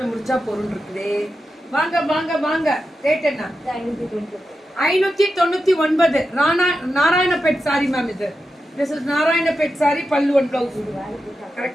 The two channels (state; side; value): normal; both; correlation 0.89